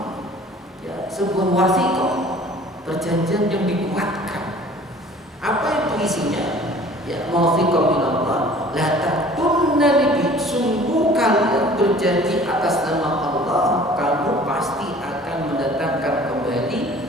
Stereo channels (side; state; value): both; normal; correlation 0.48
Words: ya, sebuah wasiqah, perjanjian yang dikuatkan. Apa itu isinya? Ya, mawthiqan minallah La takunna libi, sungguh kalian berjanji atas nama Allah, kamu pasti akan mendatangkan kembali